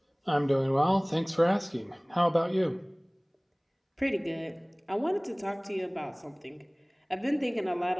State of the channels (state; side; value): identical; both; correlation 1.00